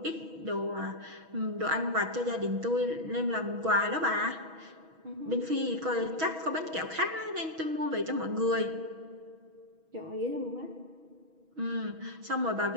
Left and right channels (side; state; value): left; late; 6.2 ms